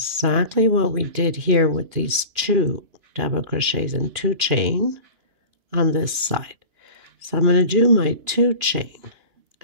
what we did here with these 2 double crochets and 2 chain on this side. So I'm going to do my 2 chain.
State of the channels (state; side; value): late; left; 2.9 ms